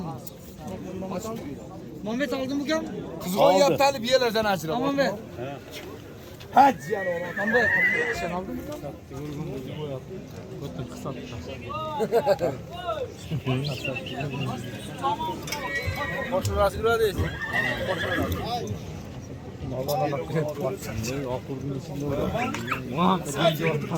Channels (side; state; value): both; identical; correlation 1.00